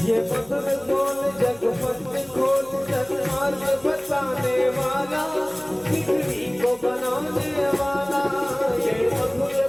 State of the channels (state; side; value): noise; left; hum, 28 dB below the sound